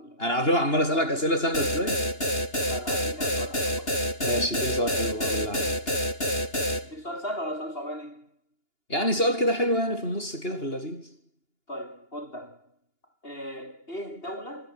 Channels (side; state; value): right; late; 2.9 ms